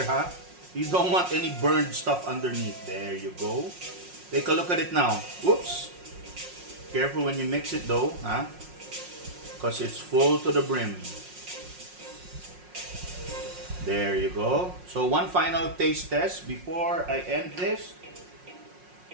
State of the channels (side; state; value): left; late; 5.6 ms